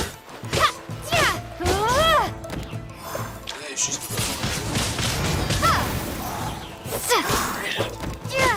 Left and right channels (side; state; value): both; identical; correlation 1.00